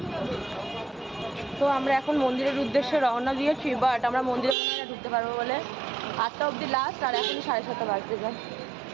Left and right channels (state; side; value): drops out; left; at 4.5 s